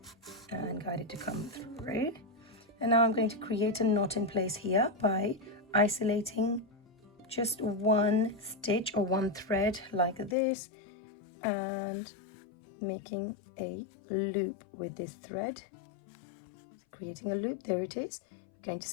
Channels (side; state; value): right; drops out; at 10.4 s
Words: and guide it to come through. And now I'm going to create a knot in place here by isolating just one stitch or one thread like this and making a loop with this thread. Creating a loop, there it is. We're going to